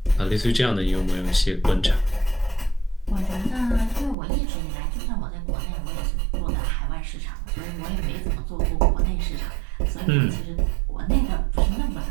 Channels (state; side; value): drops out; left; at 4.2 s